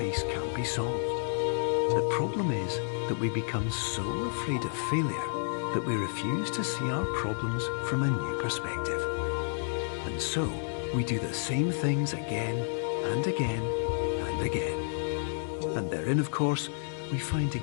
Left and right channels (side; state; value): right; silent; 57 dB below the other